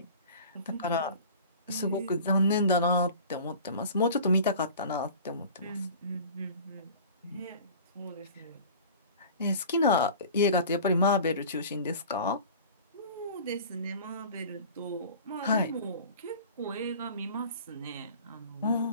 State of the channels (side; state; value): both; inverted; correlation -0.41